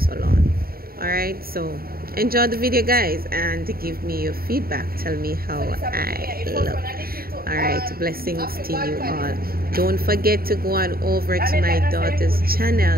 All right, so enjoy the video, guys, and give me your feedback. Tell me how I look. All right, blessings to you all. Don't forget to go on over to my daughter's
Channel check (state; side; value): late; left; 0.43 ms